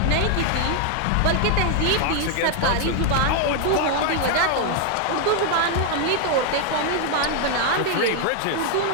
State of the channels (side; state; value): both; different; correlation 0.00